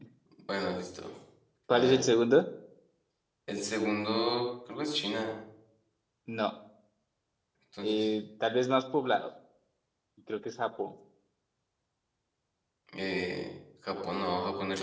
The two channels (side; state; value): both; identical; correlation 1.00